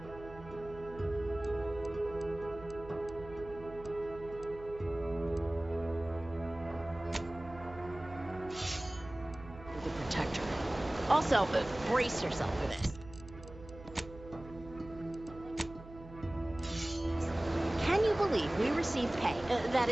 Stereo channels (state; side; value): noise; right; hum, 16 dB below the sound